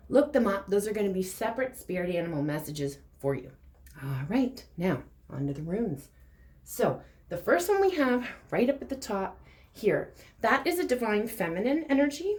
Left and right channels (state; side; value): identical; both; correlation 1.00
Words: Look them up. Those are going to be separate spirit animal messages for you. All right, now on to the runes. So the first one we have right up at the top here, that is a divine feminine energy.